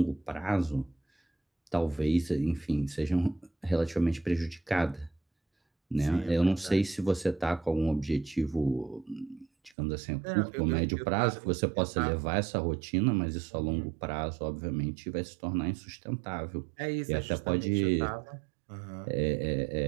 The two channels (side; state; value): left; drops out; at 9.7 s